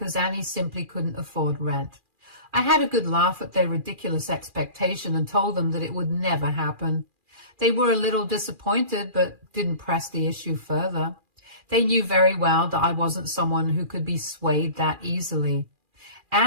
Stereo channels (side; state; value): left; late; 2.4 ms